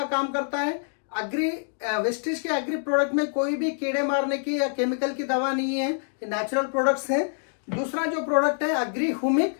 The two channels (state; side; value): silent; right; digital silence